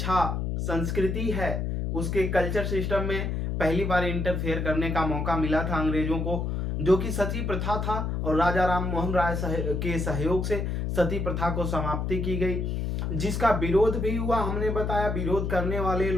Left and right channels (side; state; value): left; noise; hum, 1 dB below the sound